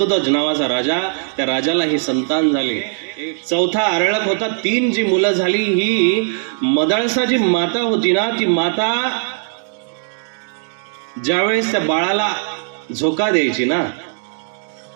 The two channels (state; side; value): silent; left; digital silence